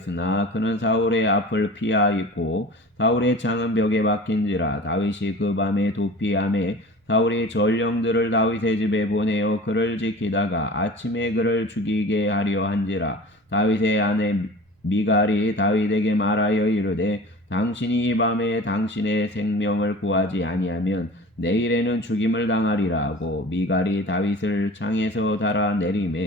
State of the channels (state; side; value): normal; both; correlation 0.39